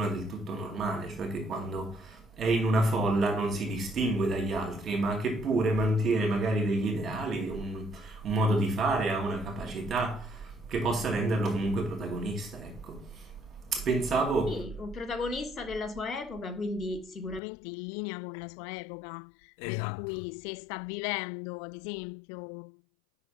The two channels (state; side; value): drops out; right; at 17.4 s